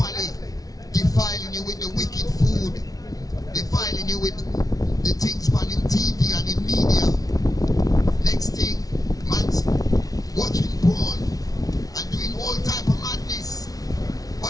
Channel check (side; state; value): right; late; 0.18 ms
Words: defiling you with the wicked food, defiling you with the things on in TV and in media. Next thing, man's watching porn and doing all type of madness.